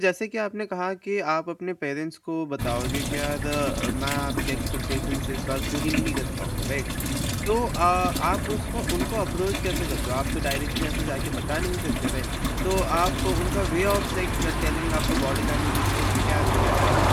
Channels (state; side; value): identical; both; correlation 1.00